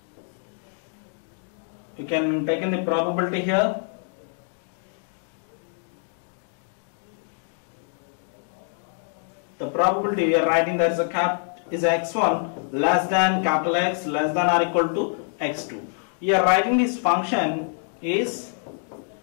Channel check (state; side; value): silent; right; 61 dB below the other